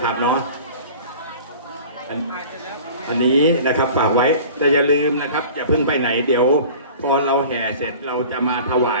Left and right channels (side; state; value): both; inverted; correlation -0.41